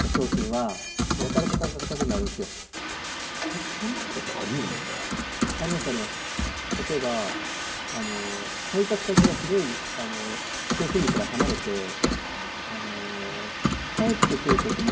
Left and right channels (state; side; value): identical; both; correlation 1.00